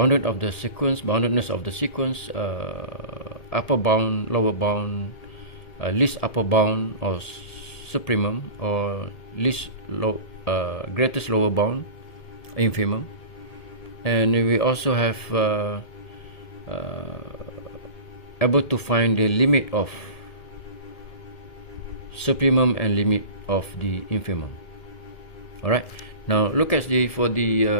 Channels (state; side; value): late; right; 1.8 ms